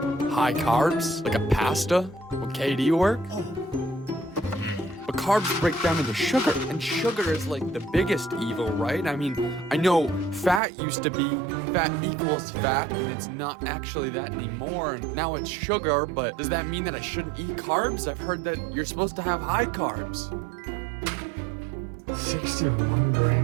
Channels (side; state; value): left; drops out; at 10.6 s